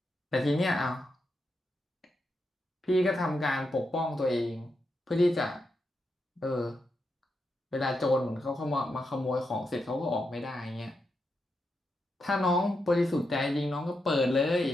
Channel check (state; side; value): normal; both; correlation 0.85